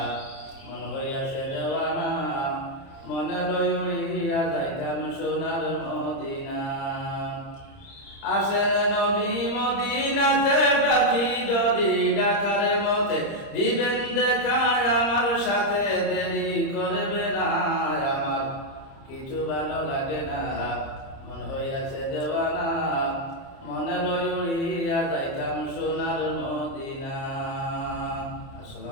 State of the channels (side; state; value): right; late; 30 ms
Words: মন হইয়াছে দেওয়ানা। মনে লই উড়িয়া যাইতাম সোনার মদিনা। আসেন নবী মদিনাতে, ডাকি যদি ডাকার মতে দিবেন দেখা। আমার সাথে দেরি করবে না, আমার কিছু ভালো লাগে না, মন হইয়াছে দেওয়ানা। মনে লই উড়িয়া যাইতাম সোনার মদিনা।